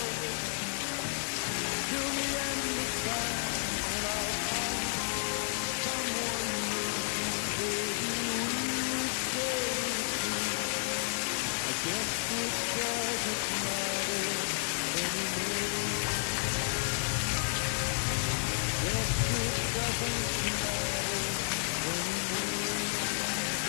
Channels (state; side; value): silent; right; 57 dB below the other